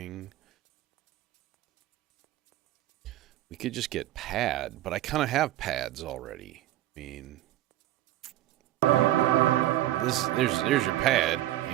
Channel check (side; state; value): left; quieter; 14.4 dB